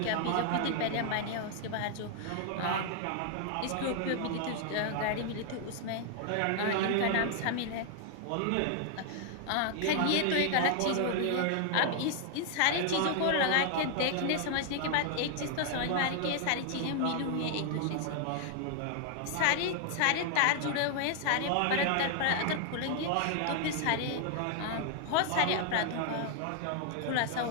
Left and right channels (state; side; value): different; both; correlation 0.00